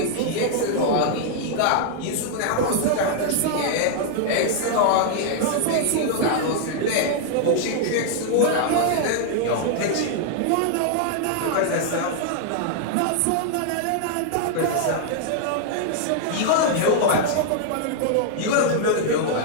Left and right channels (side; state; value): both; different; correlation -0.01